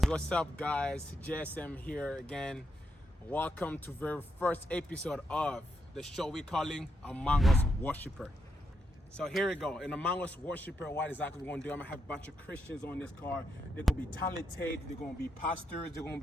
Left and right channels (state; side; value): normal; both; correlation 0.81